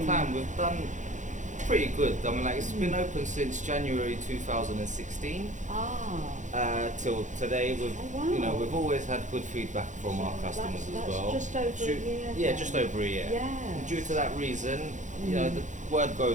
in. time, we've done pretty good. I mean, it's been open since January 2016 till today. wow. We've always had good feedback from our customers That's as well. just over a year Yeah, then. just over a year. Yes. And due to that reason, the word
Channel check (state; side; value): late; left; 0.36 ms